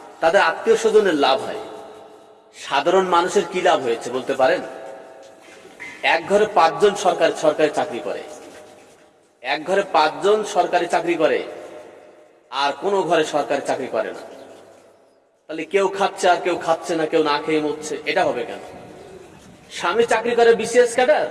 তাদের আত্মীয় স্বজনের লাভ হয়। সাধারণ মানুষের কি লাভ হয়েছে বলতে পারেন? এক ঘরে 5 জন সরকারি চাকরি করে, এক ঘরে 5 জন সরকারি চাকরি করে, আর কোনো ঘরে সরকারি চাকরি করে না। তাহলে কেউ খাচ্ছে আর কেউ খাচ্ছে না, কেউ না খেয়ে মরছে, এটা হবে কেন? স্বামী চাকরি করে বিসিএস ক্যাডার,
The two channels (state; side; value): identical; both; correlation 1.00